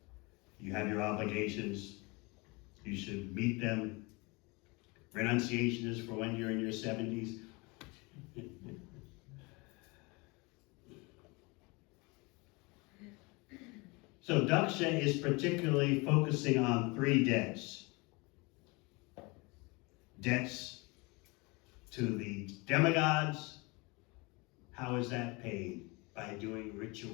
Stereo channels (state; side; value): quieter; right; 26.9 dB